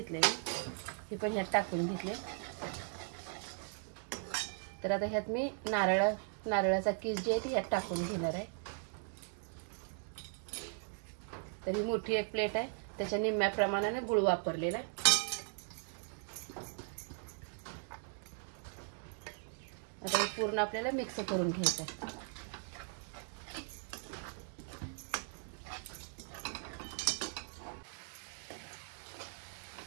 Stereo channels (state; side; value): silent; left; 52 dB below the other